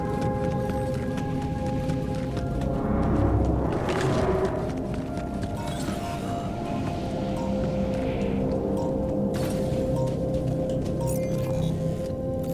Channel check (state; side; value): identical; both; correlation 1.00